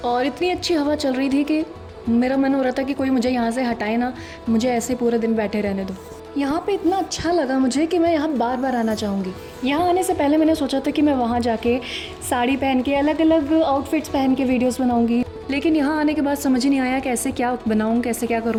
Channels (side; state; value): both; identical; correlation 1.00